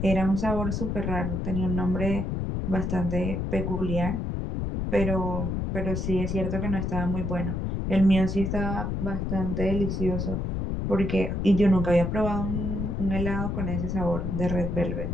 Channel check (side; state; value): left; noise; rumble, 2 dB below the sound